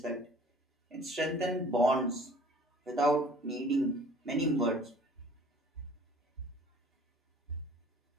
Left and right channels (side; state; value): both; normal; correlation 0.50